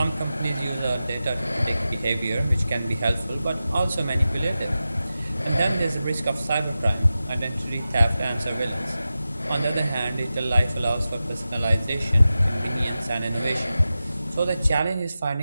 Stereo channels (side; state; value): both; inverted; correlation -0.93